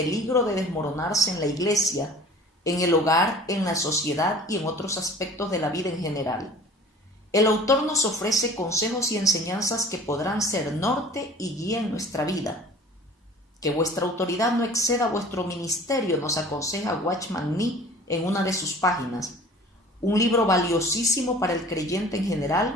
de desmoronarse en la iglesia, en el hogar, en la sociedad y en otros aspectos de la vida en general, el autor nos ofrece consejos y enseñanzas que podrán ser norte y guía en nuestra vida. Que vuestra autoridad no exceda vuestro ministerio, nos aconseja Watchman Nee en una de sus páginas. Un libro valiosísimo para el creyente en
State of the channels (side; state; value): both; normal; correlation 0.45